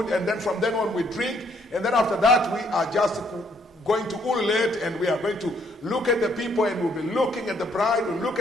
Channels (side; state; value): both; normal; correlation 0.68